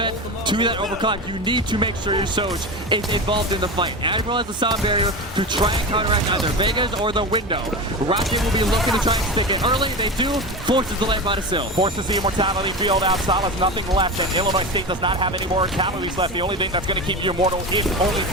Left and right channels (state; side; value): normal; both; correlation 0.24